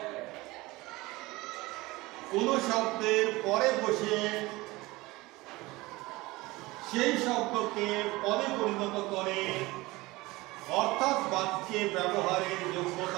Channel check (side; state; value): left; quieter; 21.1 dB